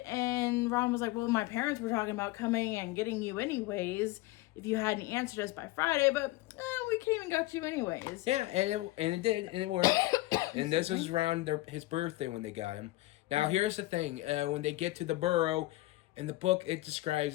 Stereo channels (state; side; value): quieter; right; 18.9 dB